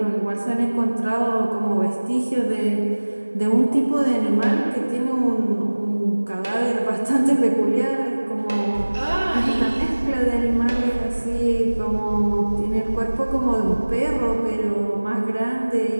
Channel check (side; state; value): both; inverted; correlation -1.00